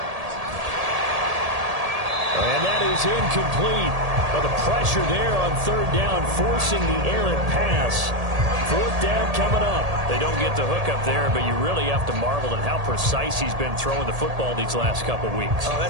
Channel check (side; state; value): left; late; 1.8 ms